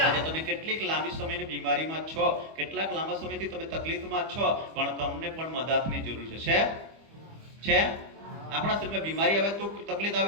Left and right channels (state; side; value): late; left; 25 ms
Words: આજે તમે કેટલીક લાંબી સમયની બીમારીમાં છો, કેટલાક લાંબા સમયથી તમે તકલીફમાં છો, પણ તમને પણ મદદની જરૂર છે. આપણા શરીરમાં બીમારી આવે તો, તકલીફ